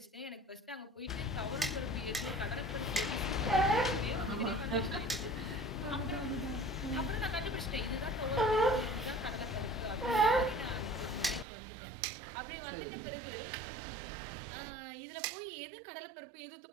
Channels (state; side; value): drops out; left; at 11.5 s